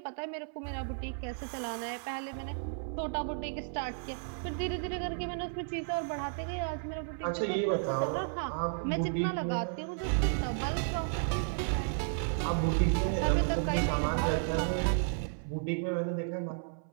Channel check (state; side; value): silent; left; 56 dB below the other